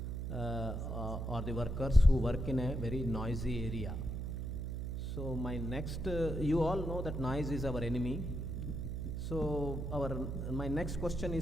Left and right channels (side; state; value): right; noise; hum, 3 dB below the sound